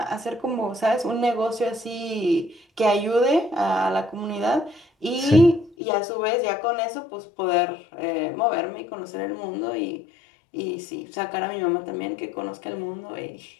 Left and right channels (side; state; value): right; drops out; at 5.8 s